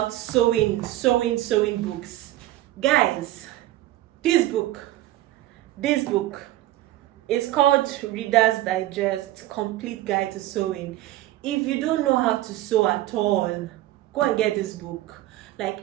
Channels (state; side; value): quieter; left; 15.3 dB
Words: sewing books. Guys, this book is called Reader's Digest Complete Guide to Sewing. If you don't know how to sew at all, go and get this book. Like